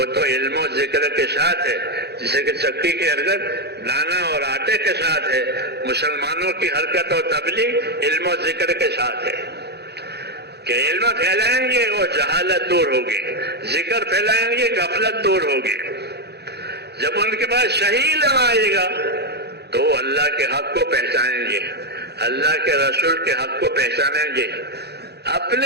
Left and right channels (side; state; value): left; late; 0.48 ms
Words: تو علم و ذکر کے ساتھ ہے. جسے کہ چکی کی حرکت دانا اور آٹے کے ساتھ ہے، مسلمانوں کی حرکت اور تبلیغ علم و ذکر کے ساتھ ہے. کہ علم پھیلائیں گے اور جہالت دور ہوگی، ذکر پھیلائیں گے غفلت دور ہوگی. جب ان کے پاس صحیح علم آئے گا تو وہ اللہ کے حق کو پہچانیں گے، اللہ کے رسول کے حق کو پہچانیں گے،